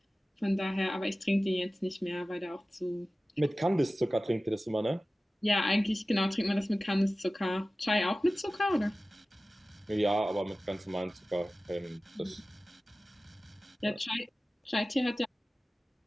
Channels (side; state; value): both; normal; correlation 0.96